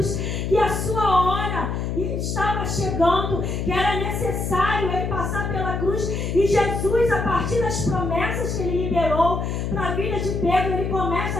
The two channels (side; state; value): left; noise; hum, 2 dB below the sound